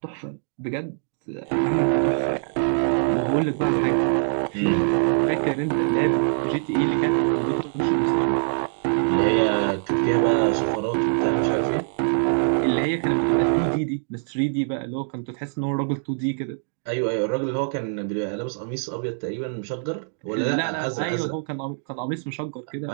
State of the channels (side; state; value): left; silent; digital silence